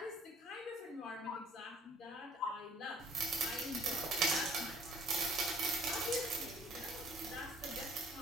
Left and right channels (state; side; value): normal; both; correlation 0.58